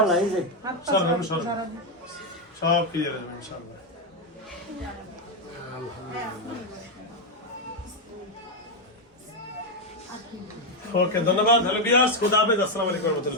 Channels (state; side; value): normal; both; correlation 0.04